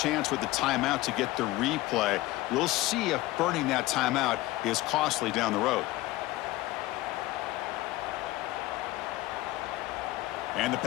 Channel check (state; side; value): quieter; right; 18.0 dB